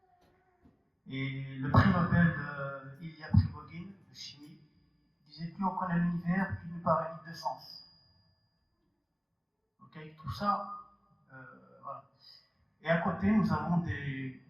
Et le prix Nobel de Ilya Prigogine, de chimie, disait plus on connaît l'univers, plus il nous paraît vide de sens. Ok, tout ça, voilà. Et à côté, nous avons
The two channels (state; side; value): identical; both; correlation 1.00